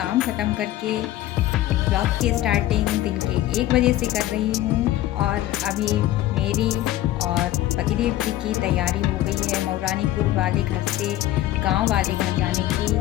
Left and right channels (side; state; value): right; quieter; 14.5 dB